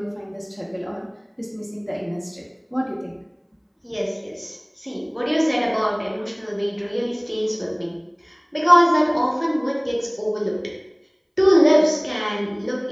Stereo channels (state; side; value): identical; both; correlation 1.00